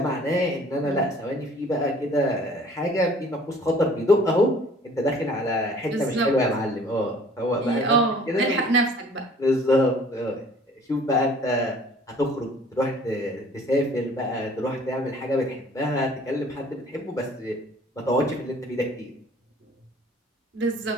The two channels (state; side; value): normal; both; correlation 0.53